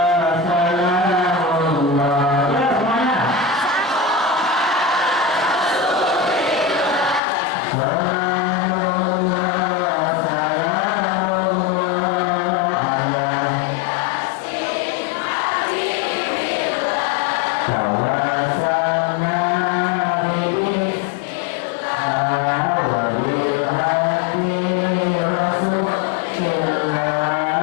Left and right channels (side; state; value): right; drops out; at 7.2 s